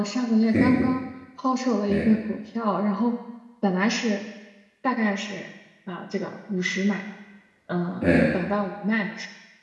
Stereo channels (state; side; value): identical; both; correlation 1.00